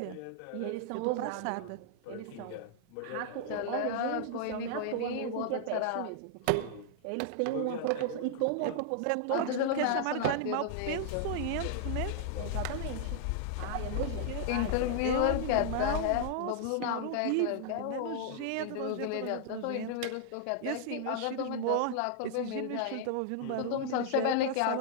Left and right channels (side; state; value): both; different; correlation -0.01